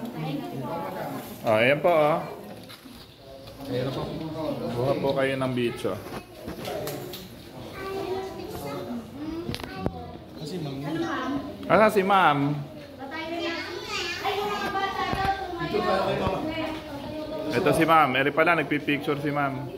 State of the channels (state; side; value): identical; both; correlation 1.00